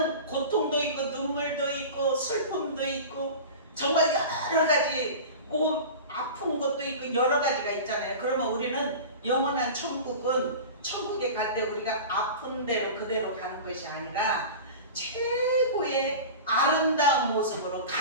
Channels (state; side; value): inverted; both; correlation -0.33